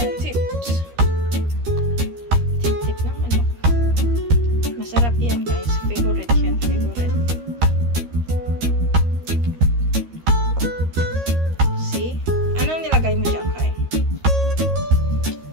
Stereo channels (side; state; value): left; late; 13 ms